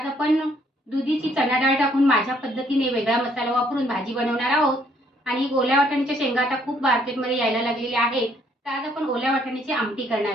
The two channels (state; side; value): normal; both; correlation 0.67